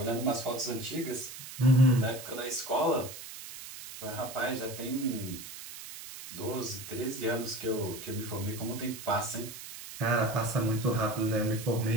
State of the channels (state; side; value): noise; right; hiss, 12 dB below the sound